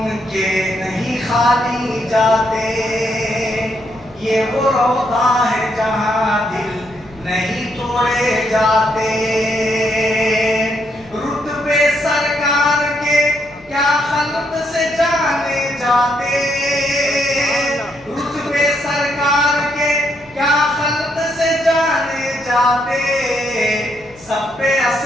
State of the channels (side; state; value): left; noise; hum, 26 dB below the sound